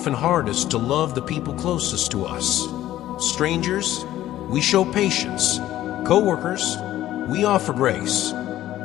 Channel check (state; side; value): quieter; right; 13.7 dB